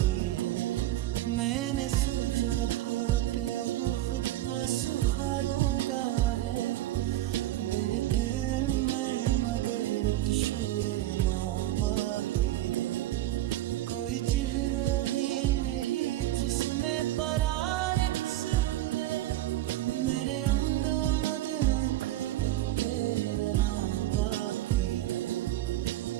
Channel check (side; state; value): left; quieter; 14.8 dB